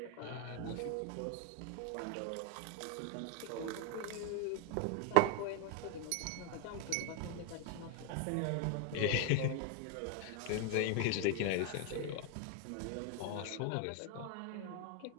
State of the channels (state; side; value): different; both; correlation 0.01